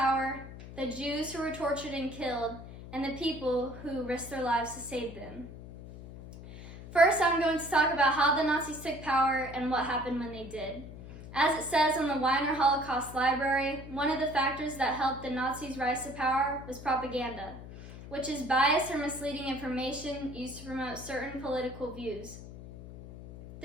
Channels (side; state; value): left; noise; hum, 14 dB below the sound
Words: the Jews who were tortured and killed, and the people who risked their lives to save them. First, I'm going to talk about how the Nazis took power and what happened when they did. As it says on the Weiner Holocaust Library, one of the factors that helped the Nazis rise to power was propaganda, which is biased or misleading information used to promote certain political views.